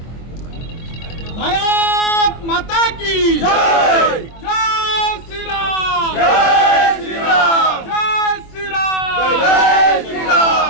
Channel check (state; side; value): late; right; 24 ms